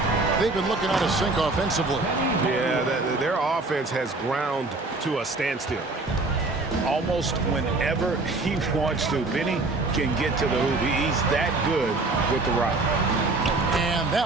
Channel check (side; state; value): left; quieter; 3.3 dB